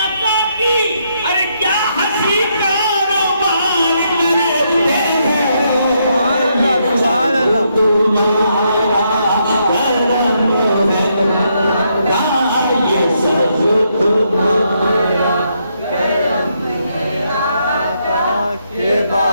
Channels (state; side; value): inverted; both; correlation -0.77